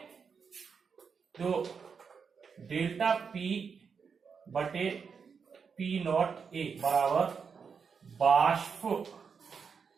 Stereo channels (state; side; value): quieter; left; 6.0 dB